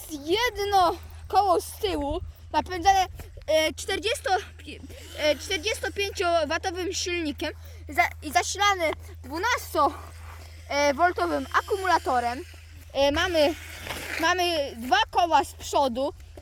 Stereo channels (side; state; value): both; identical; correlation 1.00